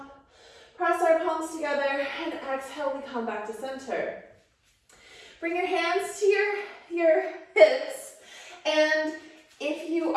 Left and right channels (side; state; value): both; identical; correlation 1.00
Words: Press our palms together, and exhale, we come back to center. Bring your hands to your hips, and if you